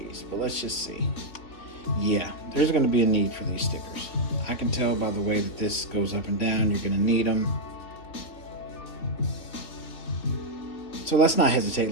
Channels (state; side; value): late; right; 3.2 ms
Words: but let's just see. Yeah, there's going to be a need for these stickers. I can tell by the way that this goes up and down, you're going to need them. So let's not